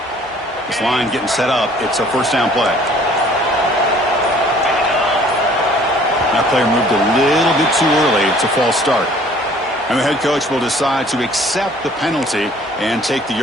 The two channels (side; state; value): both; normal; correlation 0.55